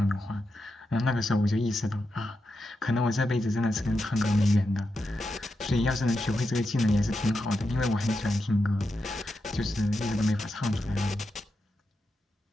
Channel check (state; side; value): normal; both; correlation 0.87